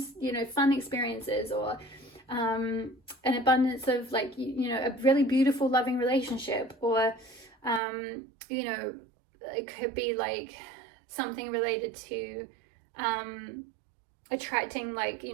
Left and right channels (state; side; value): drops out; left; at 7.8 s